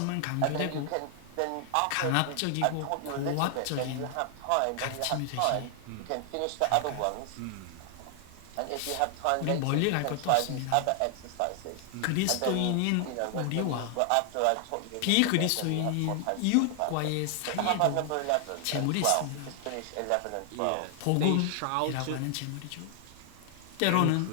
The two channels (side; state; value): both; different; correlation 0.00